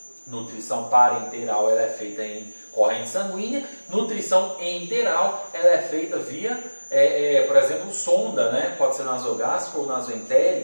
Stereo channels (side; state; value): both; inverted; correlation -1.00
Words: Nutrição parenteral ela é feita em corrente sanguínea, nutrição enteral ela é feita via, por exemplo, sonda, né? Pode ser nasogástrica ou